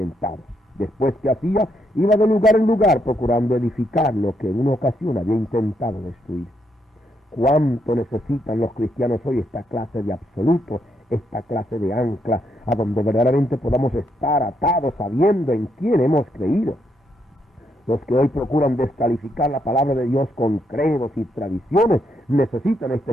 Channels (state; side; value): normal; both; correlation 0.77